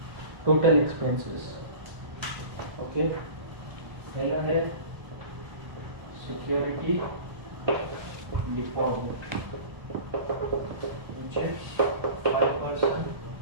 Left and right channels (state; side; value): late; left; 1.3 ms